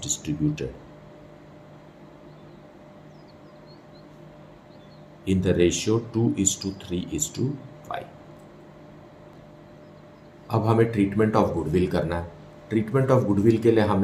distributed in the ratio 2:3:5। अब हमें ट्रीटमेंट ऑफ गुडविल करना है। ट्रीटमेंट ऑफ गुडविल के लिए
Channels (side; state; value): both; identical; correlation 1.00